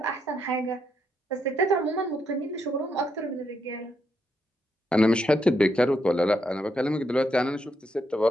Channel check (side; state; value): both; normal; correlation 0.78